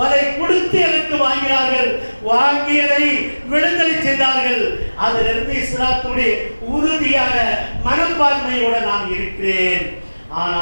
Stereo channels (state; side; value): inverted; both; correlation -1.00